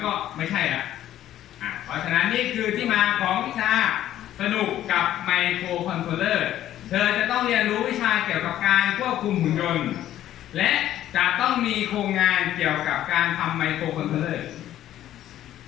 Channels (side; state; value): right; quieter; 12.4 dB